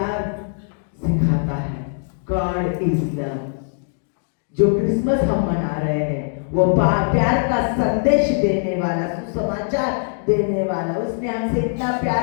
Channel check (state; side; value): silent; right; digital silence